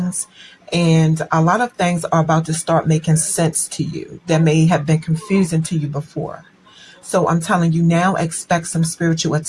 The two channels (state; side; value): identical; both; correlation 1.00